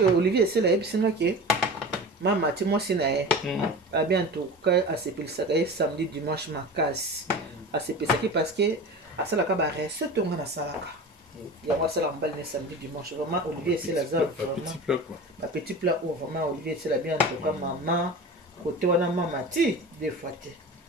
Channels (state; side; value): normal; both; correlation 0.33